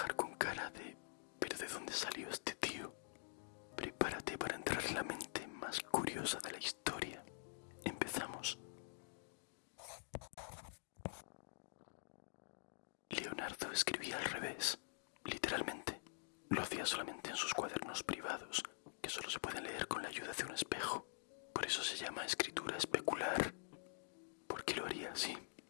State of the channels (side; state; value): right; silent; digital silence